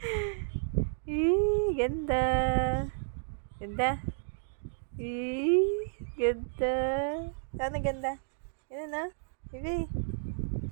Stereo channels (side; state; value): left; silent; digital silence